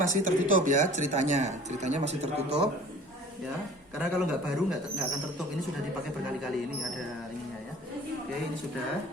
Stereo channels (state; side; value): normal; both; correlation 0.47